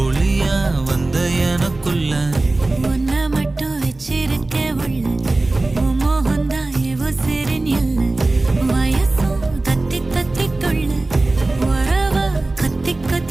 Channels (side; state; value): left; quieter; 3.0 dB